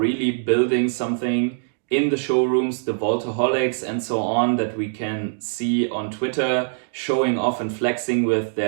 building something in the showrooms, the Vaultaholics and so on that we can see on Twitter showing off and flexing with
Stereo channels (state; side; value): silent; left; digital silence